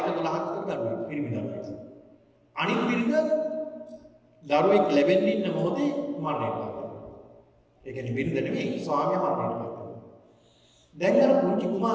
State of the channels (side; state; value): both; identical; correlation 1.00